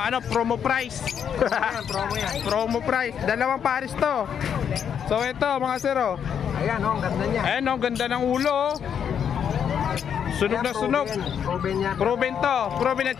promo price. Promo yan. Promo price. Dalawang pares to. So ito, mga sir, oh. Ayan oh, ang ganda niya. Ayan, oh, ganda ng ulo, oh. Sunog na sunog. Proven yan. Proven to. Proven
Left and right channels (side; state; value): right; quieter; 8.1 dB